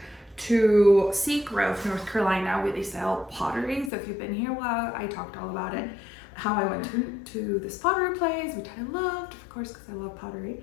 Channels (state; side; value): drops out; right; at 3.9 s